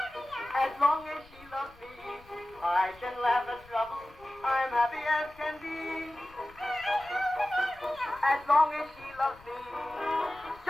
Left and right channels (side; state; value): left; noise; rumble, 24 dB below the sound